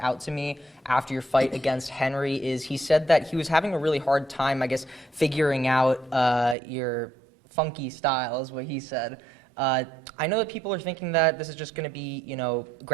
out to me after your fight against Henry is he said that he was having a really hard time, I guess, figuring out your funky style, is what he said. I know that people are thinking that this is just going to be,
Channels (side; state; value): left; drops out; at 6.6 s